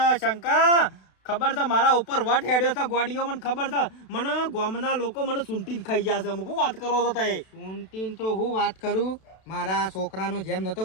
શંકા ખબર છે મારા ઉપર વટ હેડ્યો છે ગોડીઓ મને ખબર છે મને ગોમના લોકો મને સૂંટીને ખાઈ જશે અમુક વાત કરો છો તે સૂંટીને તો હું વાત કરું મારા છોકરાનો જેમ નતો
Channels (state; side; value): late; right; 32 ms